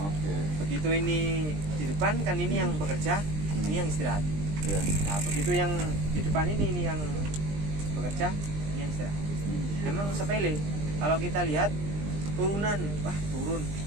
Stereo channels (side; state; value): left; late; 20 ms